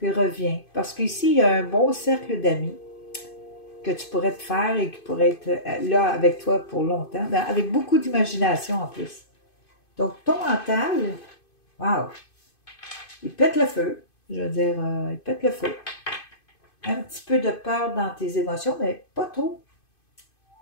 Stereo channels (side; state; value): right; late; 2.5 ms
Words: reviens. Parce qu'ici, il y a un bon cercle d'amis que tu pourrais te faire et qui pourrait être là avec toi pour longtemps, ben, avec beaucoup d'imagination en plus. Donc, ton mental, wow, il pète le feu. Je veux dire, il pète le feu. Un petit peu de peur dans tes émotions, mais pas trop.